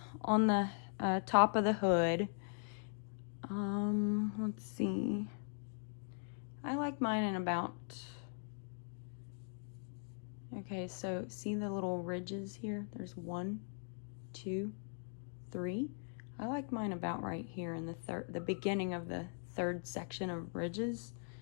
on the top of the hood, let's see. I like mine in about, okay, so see the little ridges here? There's 1, 2, 3. I like mine about right here in the beginning of the 3rd section of ridges,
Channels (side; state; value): right; silent; 51 dB below the other